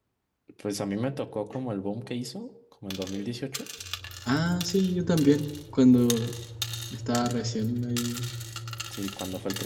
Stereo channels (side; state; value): both; identical; correlation 1.00